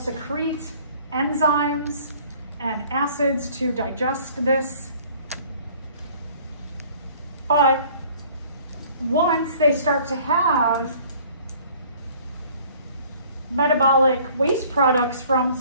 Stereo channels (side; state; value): both; inverted; correlation -0.53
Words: enzymes and acids to digest this. But once they start to have metabolic waste products from